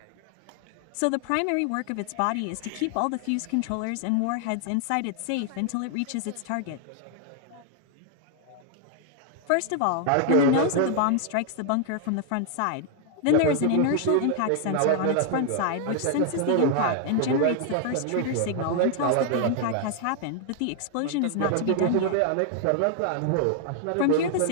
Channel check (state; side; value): different; both; correlation 0.00